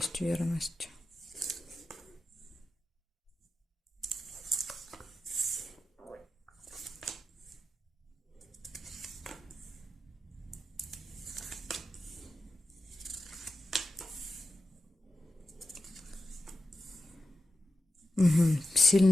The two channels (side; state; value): both; normal; correlation 0.91